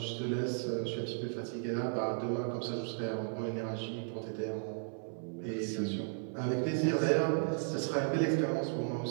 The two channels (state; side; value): silent; left; 54 dB below the other